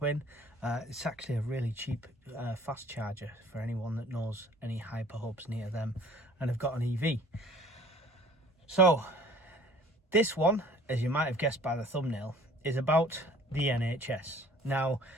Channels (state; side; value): normal; both; correlation 0.52